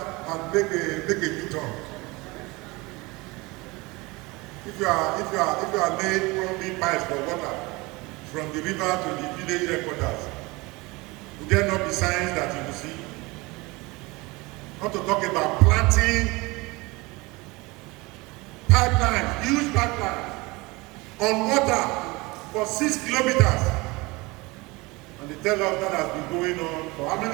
and make a U-turn. If you are laying one big pipes for water from the river to the village headquarters, would there not be signs that you will see? Not to talk about planting pipelines, huge pipelines on water for 6 kilometers. And they tell us that has been going on for how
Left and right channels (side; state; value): left; quieter; 23.7 dB